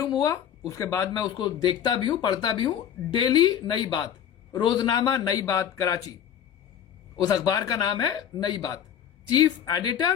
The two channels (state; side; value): quieter; right; 9.4 dB